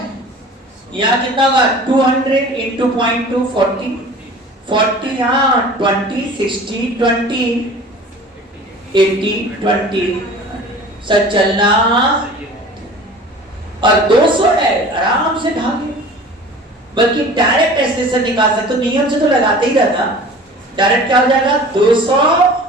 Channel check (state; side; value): normal; both; correlation 0.42